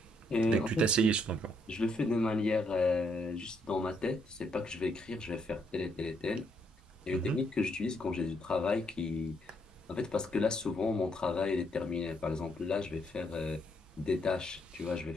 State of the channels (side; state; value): both; normal; correlation 0.74